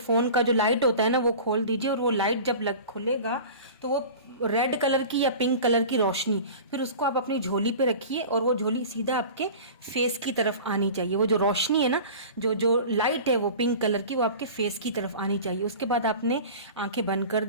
का जो लाइट होता है ना वो खोल दीजिए, और वो लाइट जब खुलेगा तो वो रेड कलर की या पिंक कलर की रोशनी, फिर उसको आप अपनी झोली पे रखिए, और वो झोली सीधा आपके फेस की तरफ आनी चाहिए। वो जो रोशनी है ना, जो जो लाइट है वो पिंक कलर की, वो आपके फेस की तरफ आनी चाहिए। उसके बाद आपने आंखें बंद कर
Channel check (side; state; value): both; inverted; correlation -0.37